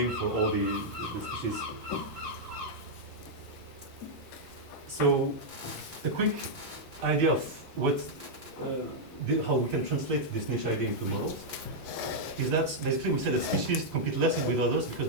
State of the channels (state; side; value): normal; both; correlation -0.05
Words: for all the species. So a quick idea of how we can translate this niche idea into models is that basically we say that species compete less with others because